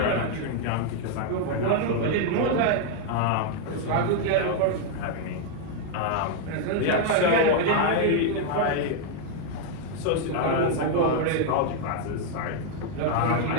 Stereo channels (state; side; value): different; both; correlation 0.00